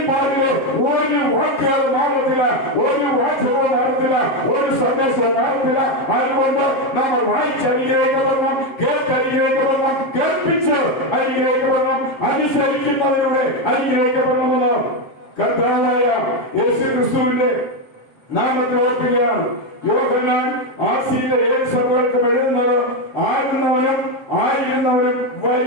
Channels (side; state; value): right; late; 7.5 ms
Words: ഒരു വാക്കുകൾ മാറത്തില്ല, ഒരു വാചകവും മാറത്തില്ല, ഒരു സന്ദേശവും മാറത്തില്ല. അതുകൊണ്ട് നമ്മൾ വായിച്ചനുഗ്രഹിക്കപ്പെടണം, കേട്ടനുഗ്രഹിക്കപ്പെടണം, കേൾപ്പിച്ച് അനുഗ്രഹിക്കപ്പെടണം, അനുസരിക്കുന്നതിലൂടെ അനുഗ്രഹിക്കപ്പെടണമെന്ന് കർത്താവായ യേശു ക്രിസ്തുവിന്റെ നാമത്തിൽ ഓർക്കുകയാണ്. യോഹന്നാൻ ആസിയിലെ 7 സഭകൾക്കും എഴുതുന്നത് ആകുന്നവനും ആയിരുന്നവനും